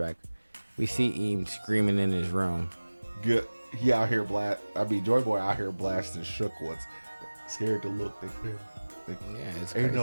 we see Eames screaming in his room. Good. He out here Joy Boy out here blasting shook ones. Scared to look. They Yeah, it's ain't no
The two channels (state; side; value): inverted; both; correlation -1.00